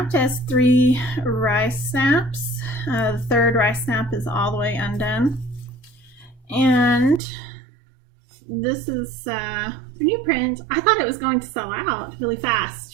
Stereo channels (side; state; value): left; drops out; at 7.2 s